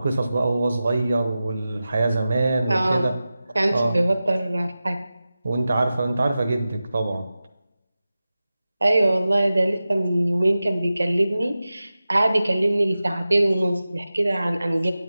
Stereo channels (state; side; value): inverted; both; correlation -0.94